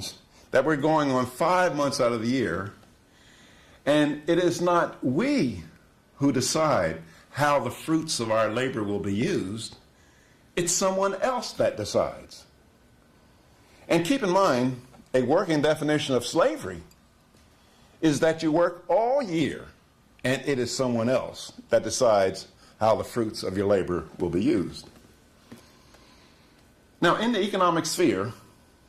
that we're going on 5 months out of the year, and it is not we who decide how the fruits of our labor will be used. It's someone else that decides. And keep in mind, a working definition of slavery is that you work all year and it is someone else that decides how the fruits of your labor will be used. Now, in the economic sphere,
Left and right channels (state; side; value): identical; both; correlation 1.00